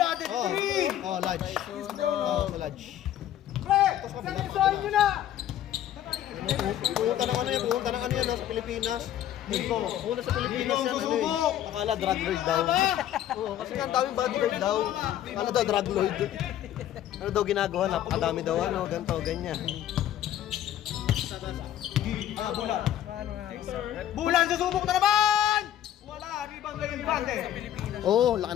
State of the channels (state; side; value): quieter; right; 11.7 dB